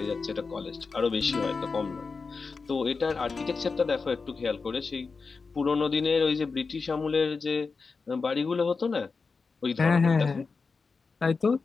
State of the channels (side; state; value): right; quieter; 4.6 dB